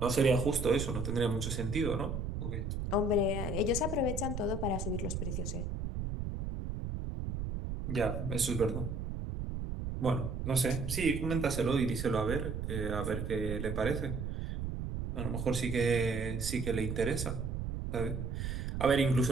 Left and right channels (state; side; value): noise; right; rumble, 3 dB below the sound